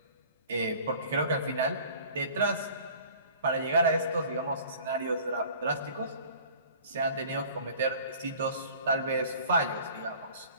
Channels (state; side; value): inverted; both; correlation -0.47